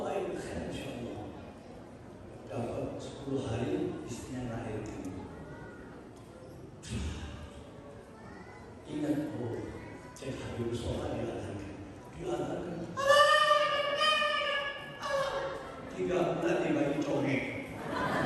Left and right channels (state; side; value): identical; both; correlation 1.00